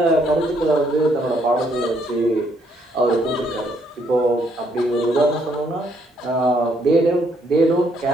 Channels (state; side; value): normal; both; correlation 0.70